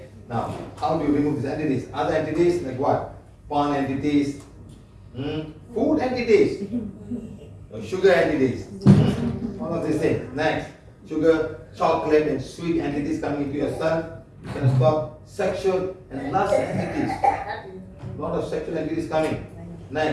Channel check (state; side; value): identical; both; correlation 1.00